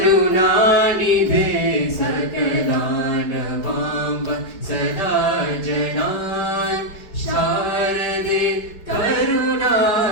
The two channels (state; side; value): late; right; 4.7 ms